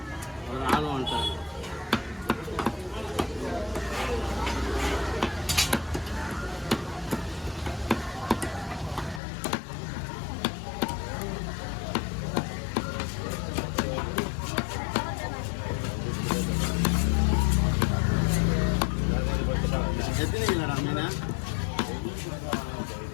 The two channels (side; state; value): right; drops out; at 9.2 s